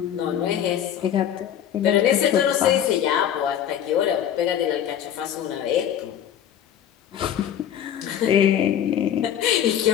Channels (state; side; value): quieter; right; 9.9 dB